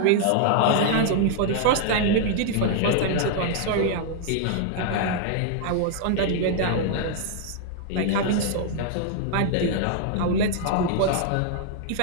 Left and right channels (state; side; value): different; both; correlation 0.00